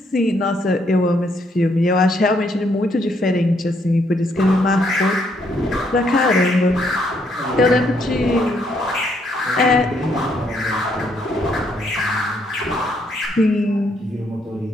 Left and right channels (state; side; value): normal; both; correlation 0.72